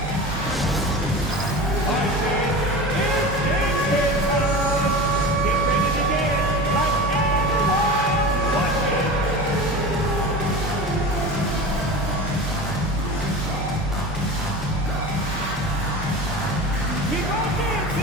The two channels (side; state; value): both; normal; correlation 0.31